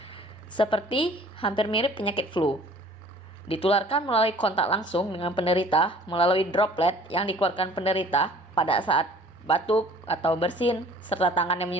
Seperti hampir mirip penyakit flu. Ditularkan melalui kontak langsung dengan penderita melalui droplet yang dikeluarkan penderita pada saat batuk atau bersin, serta tangan yang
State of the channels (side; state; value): both; normal; correlation 0.51